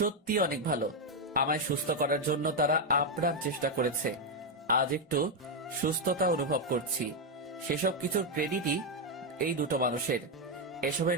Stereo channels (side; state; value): both; normal; correlation 0.03